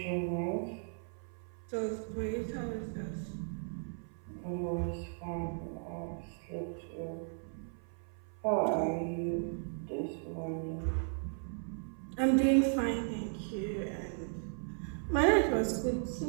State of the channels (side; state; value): left; silent; 54 dB below the other